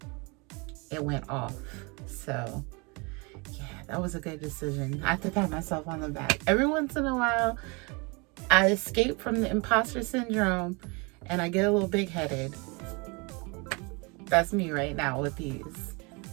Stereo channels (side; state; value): left; quieter; 29.4 dB